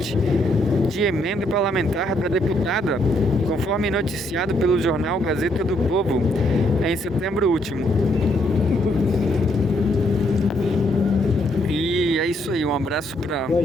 de emenda parlamentar da deputada, conforme noticiado pelo jornal Gazeta do Povo em setembro último. E é isso aí, um abraço para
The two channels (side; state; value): both; normal; correlation 0.72